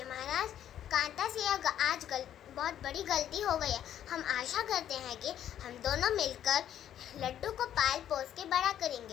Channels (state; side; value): quieter; right; 10.7 dB